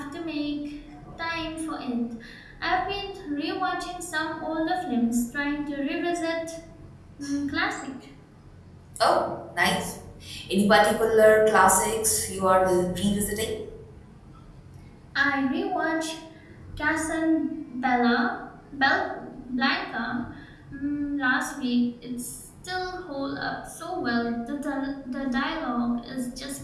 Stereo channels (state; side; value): identical; both; correlation 1.00